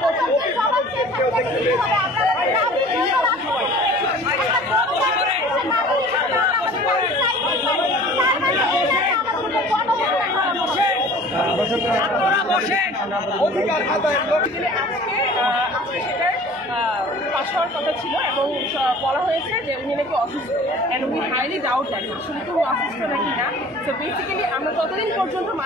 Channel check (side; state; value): right; noise; hum, 25 dB below the sound